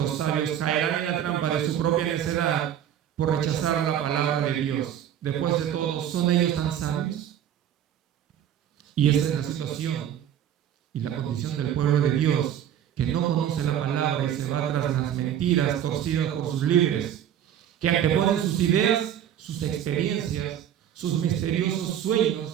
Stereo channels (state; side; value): quieter; left; 10.2 dB